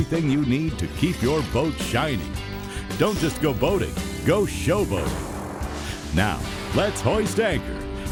you need to keep your boat shining. Don't just go boating, go showboating. Now, let's hoist anchor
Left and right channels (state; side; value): identical; both; correlation 1.00